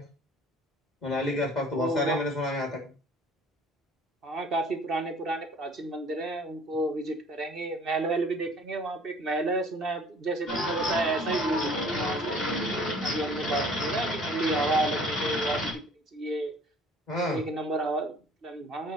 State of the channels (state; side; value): normal; both; correlation 0.51